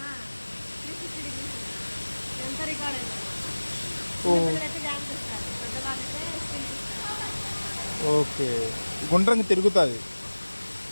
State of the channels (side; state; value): both; inverted; correlation -1.00